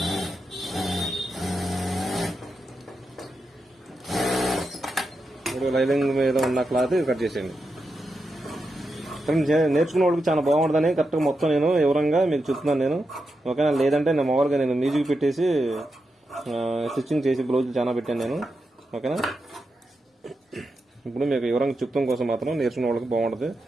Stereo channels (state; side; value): normal; both; correlation 0.87